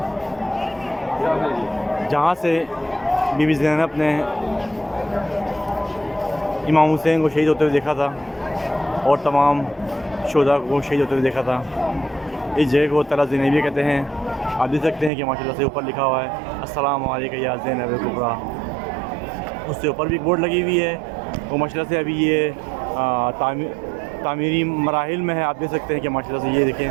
जहाँ से बीबी ज़ैनब ने इमाम हुसैन को शहीद होते हुए देखा था और तमाम शोधा को शहीद होते हुए देखा था। इस जगह को तरा ज़ैनबिया कहते हैं। आप देख सकते हैं कि माशाल्लाह से ऊपर लिखा हुआ है अस्सलामु अलैका या ज़ैनब कुबरा। उससे ऊपर भी एक बोर्ड लगी हुई है। वो माशाल्लाह से अभी ये तामीरी मराहिल में है। आप देख सकते हैं कि माशाल्लाह से ये देखें,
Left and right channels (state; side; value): drops out; left; at 15.1 s